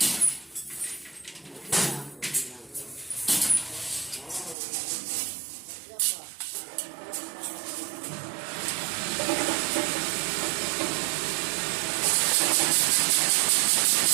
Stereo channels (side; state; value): left; drops out; at 4.5 s